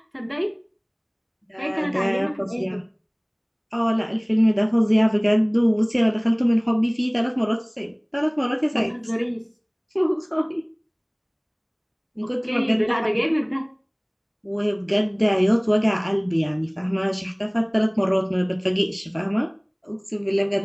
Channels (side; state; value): both; identical; correlation 1.00